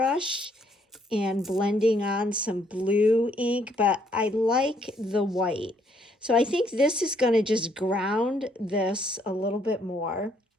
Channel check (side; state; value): both; normal; correlation 0.68